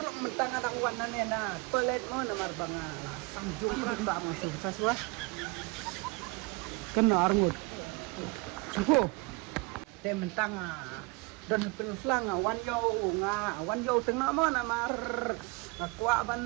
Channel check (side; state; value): left; quieter; 27.4 dB